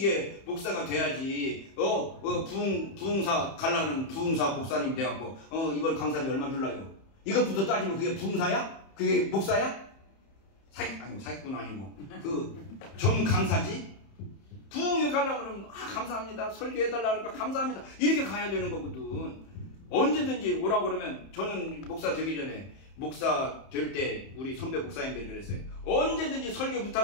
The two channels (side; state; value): right; late; 31 ms